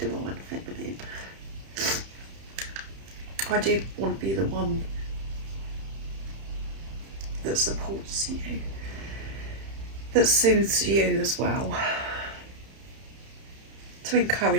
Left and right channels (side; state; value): left; late; 31 ms